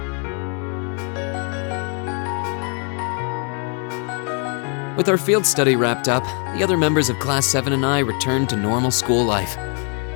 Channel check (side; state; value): right; quieter; 39.8 dB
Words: With our field study wrapped up, the other members of Class 7 and I returned to normal school life.